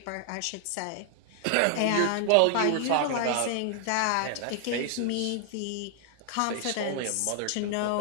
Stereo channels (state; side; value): different; both; correlation 0.00